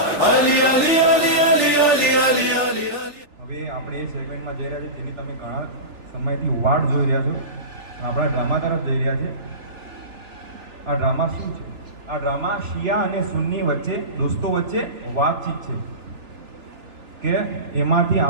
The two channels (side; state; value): left; late; 3.4 ms